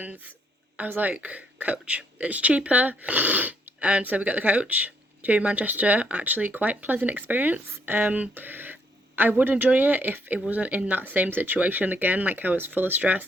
I was like, coach, it's cheaper. And so we got the coach to Manchester. Actually, quite pleasant experience. I would enjoy it if it wasn't in that same situation again, like I was full of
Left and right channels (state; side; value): normal; both; correlation 0.71